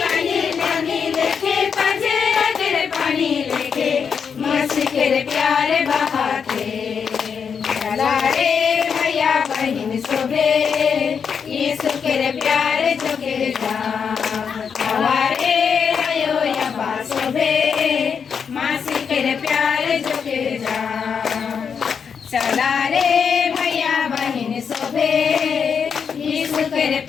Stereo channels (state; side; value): quieter; right; 6.6 dB